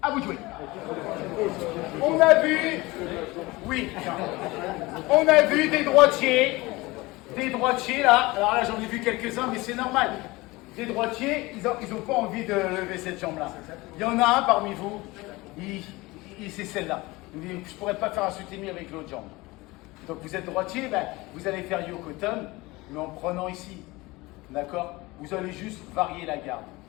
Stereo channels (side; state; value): right; quieter; 21.7 dB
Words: À vous de jouer. On a vu, oui, on a vu des droitiers là. Alors là, j'en ai vu quelques-uns, mais c'est normal. Des droitiers, ils ont pas envie de lever cette jambe-là. Il y en a un parmi vous, c'est celle-là. Je ne pourrais pas faire un soutenu avec l'autre jambe. Donc vous êtes droitier, ben, vous allez faire yokotum, mais en prenant ici. D'accord? Vous allez juste varier la garde.